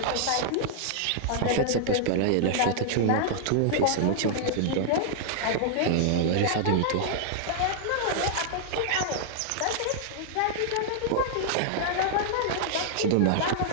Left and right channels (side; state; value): both; different; correlation -0.01